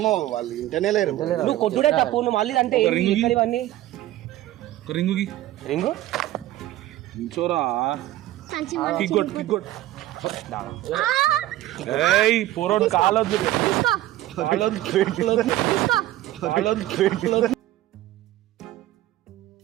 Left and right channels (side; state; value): left; quieter; 15.0 dB